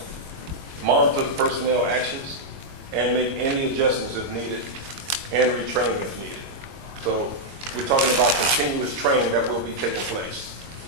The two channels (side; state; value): left; late; 22 ms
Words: Monitor the personnel actions and make any adjustments if needed, and retraining if needed. So we're talking about continuous training that will be taking place.